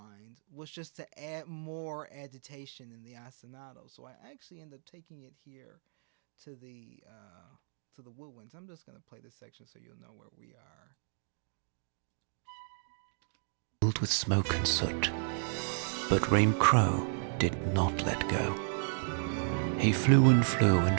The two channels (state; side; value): silent; left; digital silence